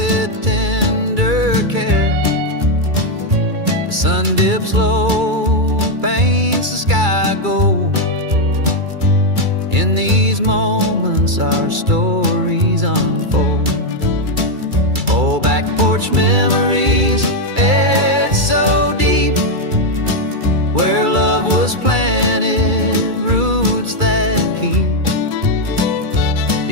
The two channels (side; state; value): left; late; 2.3 ms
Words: tender care. The sun dips low, paints the sky gold. In these moments our stories unfold. Oh, back porch memories, it's so deep, where love was planted, roots that keep.